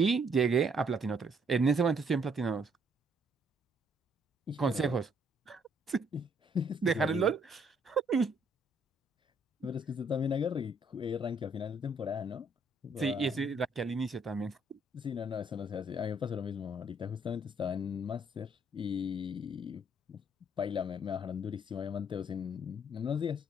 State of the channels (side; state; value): both; normal; correlation 0.67